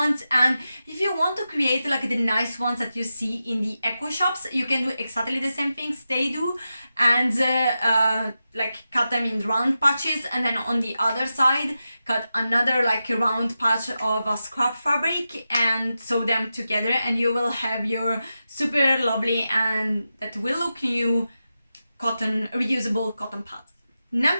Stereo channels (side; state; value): both; inverted; correlation -0.91